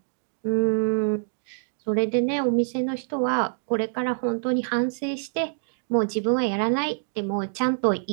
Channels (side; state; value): left; silent; digital silence